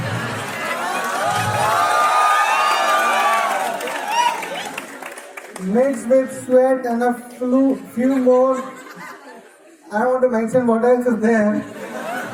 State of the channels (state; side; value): identical; both; correlation 1.00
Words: mixed with sweat and a few more. I don't want to mention what else is there.